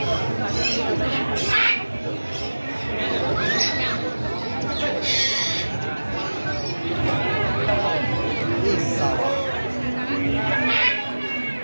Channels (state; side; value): inverted; both; correlation -1.00